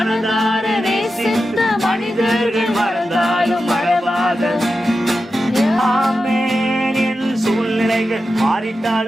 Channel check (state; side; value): normal; both; correlation 0.91